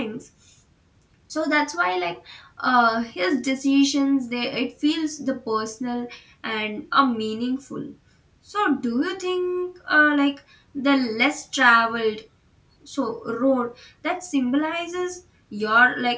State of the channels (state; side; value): identical; both; correlation 1.00